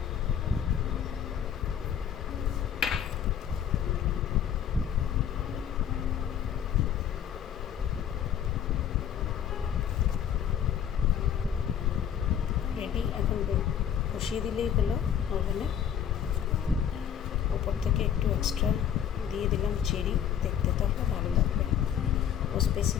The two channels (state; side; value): quieter; right; 9.1 dB